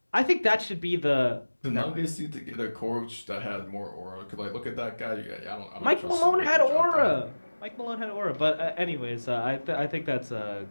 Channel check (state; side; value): inverted; both; correlation -1.00